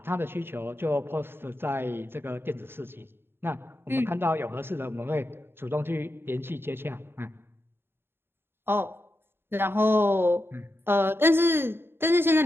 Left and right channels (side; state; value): left; late; 0.11 ms